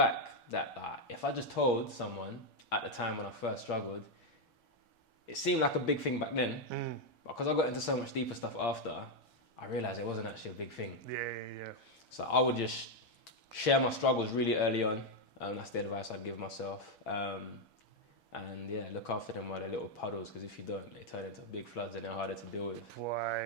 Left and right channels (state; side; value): late; right; 6.2 ms